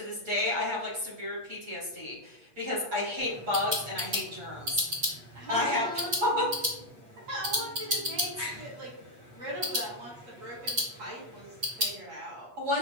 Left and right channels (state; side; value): late; left; 8.5 ms